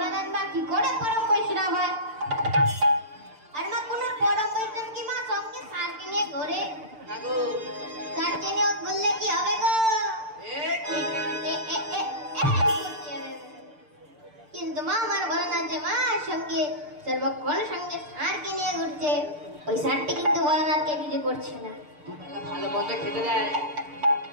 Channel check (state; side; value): late; left; 6.7 ms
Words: মা কি করে পরম বৈষ্ণব হয়? আর মা কোন পরম বৈষ্ণব কি মা সঙ্গে সারকে নিয়ে ঘরে সারকে নিয়ে ঘুরলে কি হবে গো? কিন্তু মা আমার ভোলানাথ যে মা সঙ্গে সর্বক্ষণ সঙ্গে সারকে নিয়ে ঘুরছে, ওই সারটি কিন্তু ভোলানাথকে কিছু করছে না। ভালো মন্দ খেতে দেয়